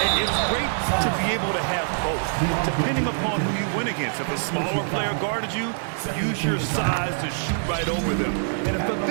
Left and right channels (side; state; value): left; silent; digital silence